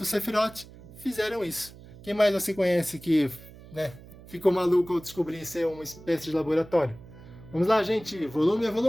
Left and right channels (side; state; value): right; noise; hum, 19 dB below the sound